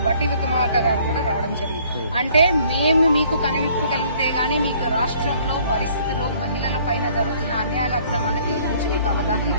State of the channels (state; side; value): inverted; both; correlation -0.59